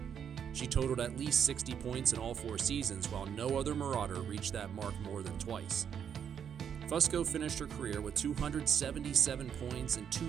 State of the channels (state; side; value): quieter; left; 8.1 dB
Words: She totaled at least 60 points in all 4 seasons, while no other Marauder reached that mark more than twice. Fusco finished her career with 277 points and